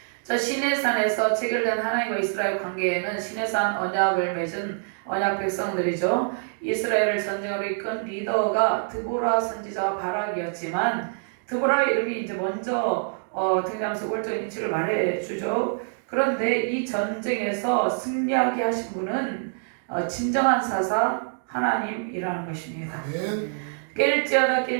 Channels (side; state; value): left; silent; digital silence